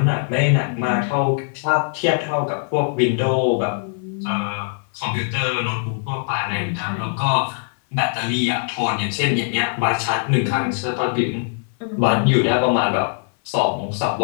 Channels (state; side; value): silent; right; 58 dB below the other